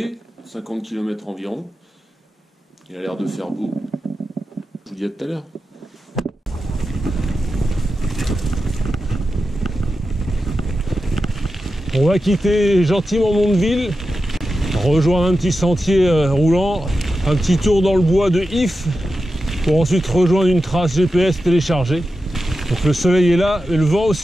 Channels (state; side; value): normal; both; correlation 0.91